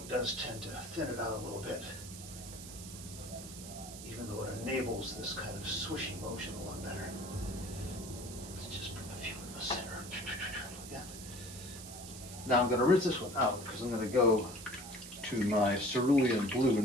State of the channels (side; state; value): right; noise; hiss, 12 dB below the sound